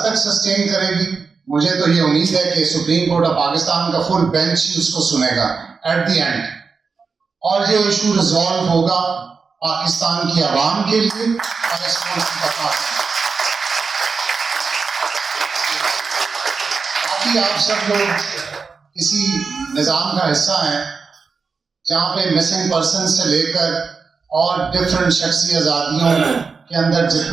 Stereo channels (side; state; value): left; quieter; 5.0 dB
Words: تک سسٹین کرے گی، مجھے تو یہ امید ہے کہ سپریم کورٹ آف پاکستان کا فل بینچ ہی اس کو سنے گا ایٹ دی اینڈ، اور یہ ایشو ریزالو ہوگا پاکستان کی عوام کے لیے اور اس ملک کی تفاق. باقی آپ سب لوگ کسی نظام کا حصہ ہیں جہاں پہ مسنگ پرسن سے لے کر اور ڈفرینٹ شخصی آزادیوں کے اندر